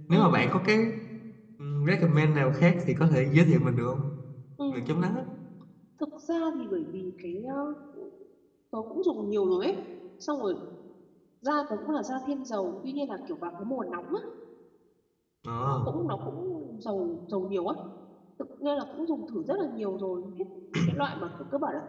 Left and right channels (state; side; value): identical; both; correlation 1.00